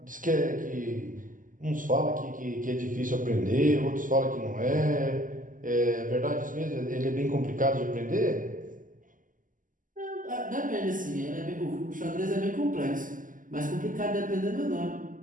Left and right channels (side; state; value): left; late; 0.38 ms